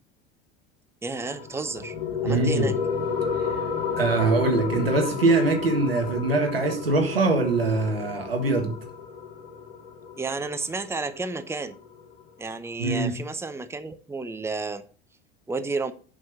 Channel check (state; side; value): normal; both; correlation 0.33